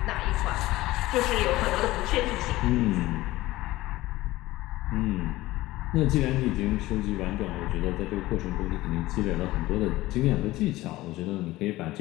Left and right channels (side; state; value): right; quieter; 17.8 dB